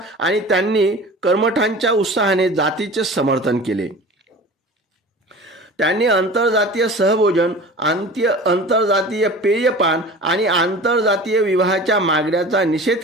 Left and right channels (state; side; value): normal; both; correlation 0.38